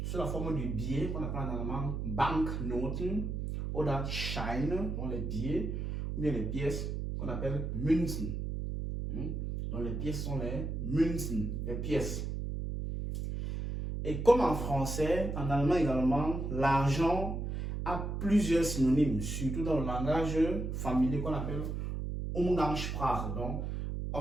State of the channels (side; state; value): right; noise; hum, 3 dB below the sound